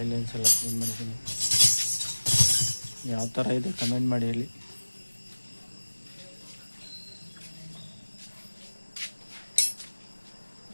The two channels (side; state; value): both; inverted; correlation -1.00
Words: ಲೈನ್ಸ್ ಎಲ್ಲ ಕ್ಲೀನ್ ಮಾಡಿದ್ದೀನಿ ಯಾವ ಥರ ಇದೆ ಕಮೆಂಟ್ ಮಾಡಿ ಹೇಳಿ